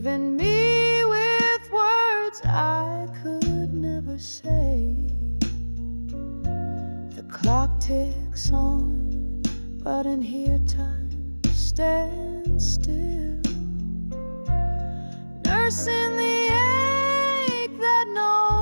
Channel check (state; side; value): inverted; both; correlation -1.00